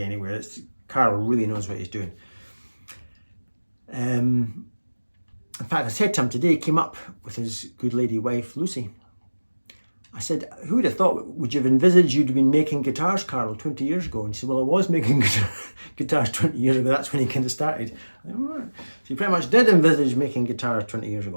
Karl really knows what he's doing. In fact, I said to him today, he came up with his good lady wife, Lucy. I said, who would have thought, would you have envisaged you'd been making guitars, Karl, 20 years ago? And he said, well, I was making guitars 20 years ago. That's when he kind of started. Said, right. So he pretty much did envisage making guitars 20 years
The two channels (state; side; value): inverted; both; correlation -1.00